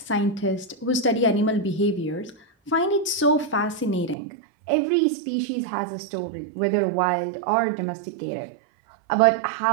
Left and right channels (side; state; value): left; drops out; at 4.2 s